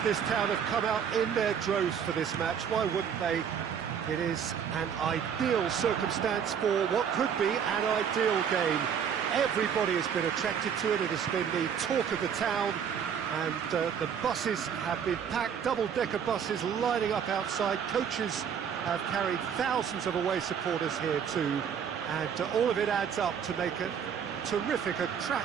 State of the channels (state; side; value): quieter; left; 7.8 dB